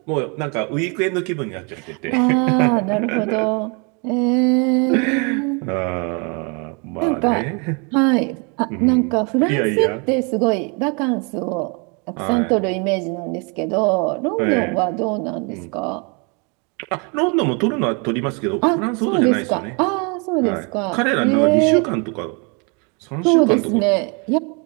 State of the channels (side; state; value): left; quieter; 33.6 dB